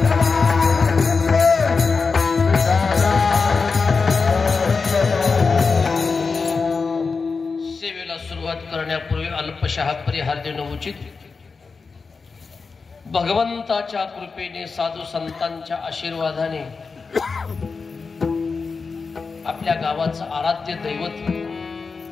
करण्यापूर्वी अल्पशः परिहार देणं उचित. भगवंताच्या कृपेने साधू संतांच्या आशीर्वादाने आपल्या गावाचं आराध्य दैवत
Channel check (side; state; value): right; quieter; 4.7 dB